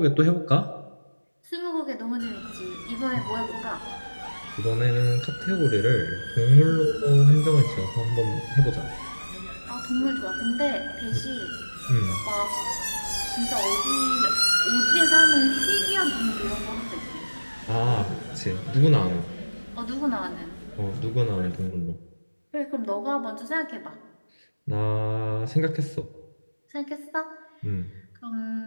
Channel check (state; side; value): inverted; both; correlation -1.00